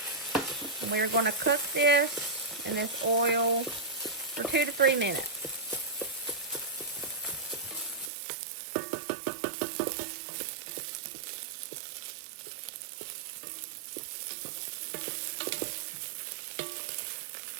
And we're going to cook this in this oil for 2 to 3 minutes.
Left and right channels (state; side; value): drops out; left; at 8.1 s